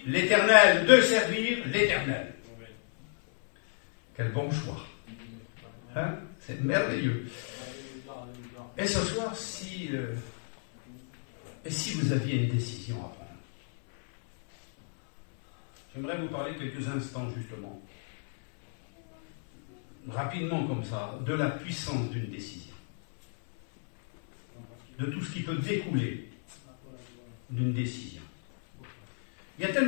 l'Éternel, de servir l'Éternel. Quel bon choix. Hein? C'est merveilleux. Et ce soir, si vous aviez une décision à prendre, j'aimerais vous parler quelques instants, justement, rapidement comme ça, de la puissance d'une décision. De tout ce qui peut découler d'une décision. Il y a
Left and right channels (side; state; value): right; silent; 57 dB below the other